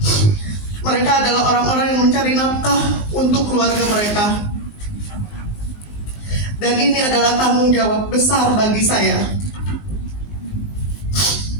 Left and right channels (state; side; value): late; right; 19 ms